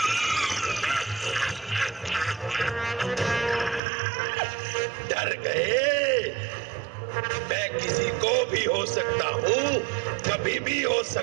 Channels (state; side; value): drops out; left; at 3.8 s